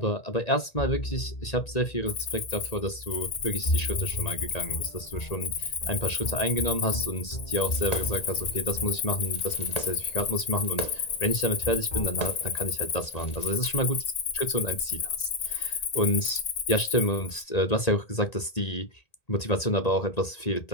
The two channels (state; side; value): late; right; 1.8 ms